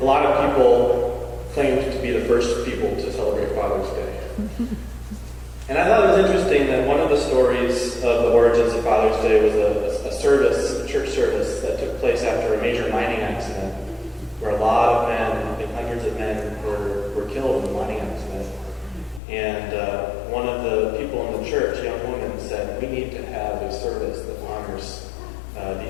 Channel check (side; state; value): right; drops out; at 19.2 s